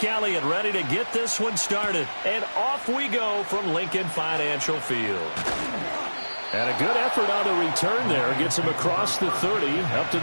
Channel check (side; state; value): both; inverted; correlation -1.00